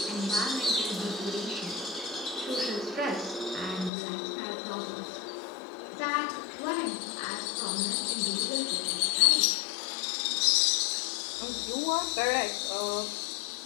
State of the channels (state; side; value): drops out; right; at 3.9 s